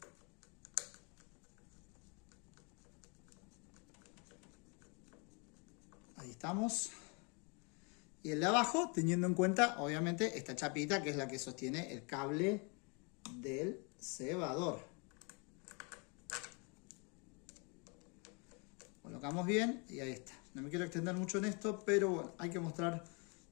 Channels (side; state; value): right; quieter; 33.3 dB